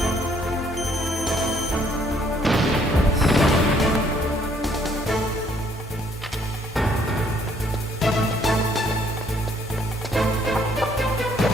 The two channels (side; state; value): both; normal; correlation 0.65